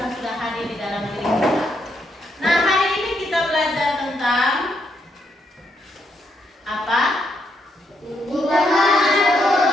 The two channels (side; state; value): both; normal; correlation 0.78